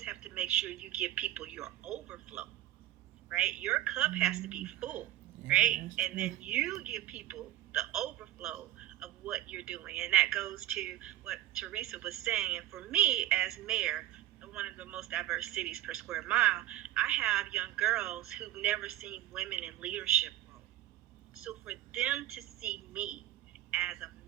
have to make sure you give people your overflow, right? Your cup has to be full, right? And then you give people the overflow of what you're doing. And that goes to what Teresa was saying. And for me, as mayor of one of the most diverse cities per square mile, I have young girls who've never seen women in leadership roles. So for them to see me as a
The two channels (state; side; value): quieter; left; 13.9 dB